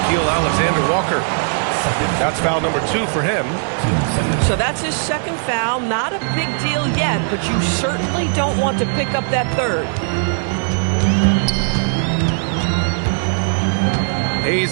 Alexander-Walker. That's foul number 2 for him. So that's his second foul. Not a big deal yet, but you certainly don't want to pick up that third.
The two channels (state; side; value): silent; left; 67 dB below the other